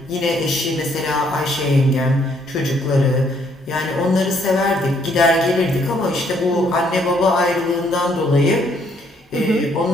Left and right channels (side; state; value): both; normal; correlation 0.68